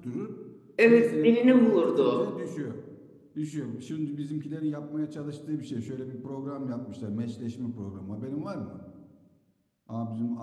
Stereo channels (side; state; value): both; identical; correlation 1.00